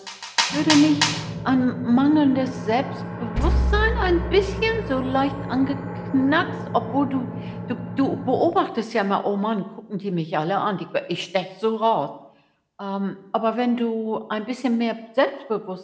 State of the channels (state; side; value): identical; both; correlation 1.00